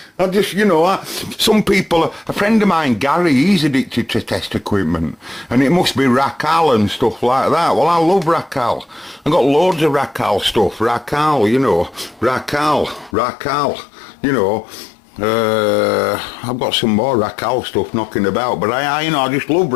I just, you know, some people, a friend of mine, Gary, he's addicted to test equipment, and it must be Racal and stuff like that. Well, I love Racal. I've got loads of Racal stuff. Racal, you know, Racal, you know. I've got some more Racal stuff knocking about, but I just love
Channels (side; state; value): right; drops out; at 13.2 s